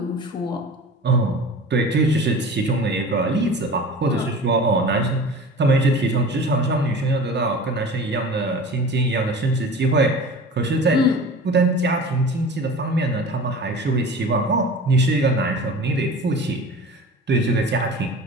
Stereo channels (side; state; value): both; normal; correlation 0.37